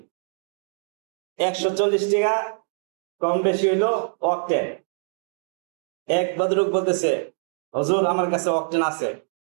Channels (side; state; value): left; silent; digital silence